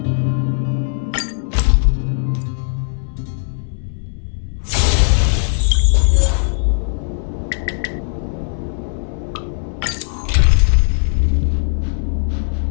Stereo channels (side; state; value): right; silent; 64 dB below the other